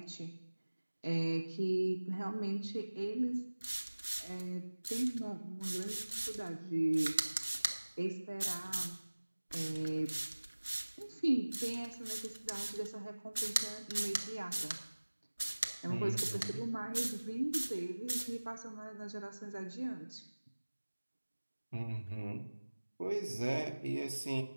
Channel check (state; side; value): inverted; both; correlation -1.00